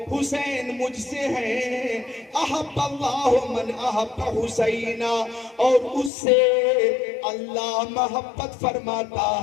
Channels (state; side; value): drops out; right; at 6.1 s